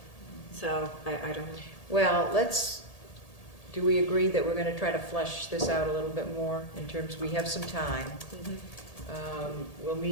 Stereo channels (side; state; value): right; late; 1.8 ms